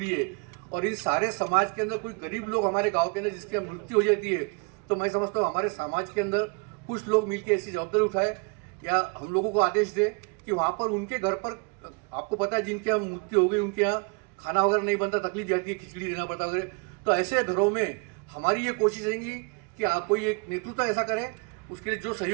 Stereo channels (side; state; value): left; quieter; 33.1 dB